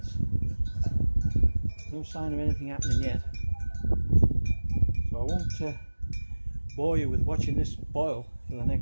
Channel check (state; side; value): inverted; both; correlation -1.00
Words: No sign of anything happening yet. So I won't bore you with watching this boil for the